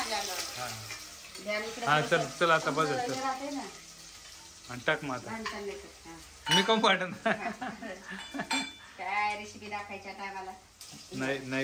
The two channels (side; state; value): both; identical; correlation 1.00